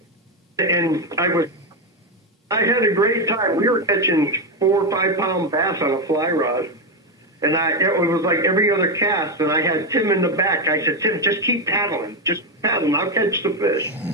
I had a great time. We were catching 4 or 5 pound bass on a fly rod. And it was like every other cast, and I had Tim in the back. I said, Tim, just keep paddling. Just paddling. I'll catch the fish.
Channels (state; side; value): normal; both; correlation 0.08